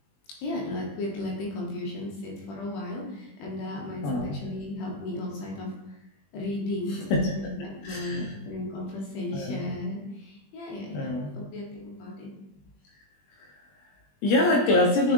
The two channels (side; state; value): right; late; 20 ms